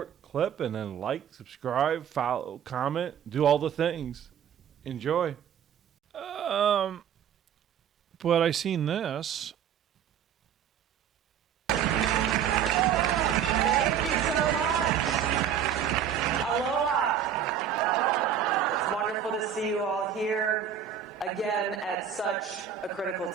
clip and then like, subscribe, follow, comment, do all the things. Enjoy. But I seen this. Thank you so much. Aloha. It's wonderful to see you all here again at such a critical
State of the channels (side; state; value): left; quieter; 8.8 dB